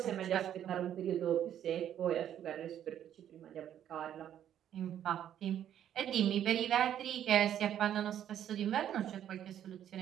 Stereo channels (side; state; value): left; quieter; 10.4 dB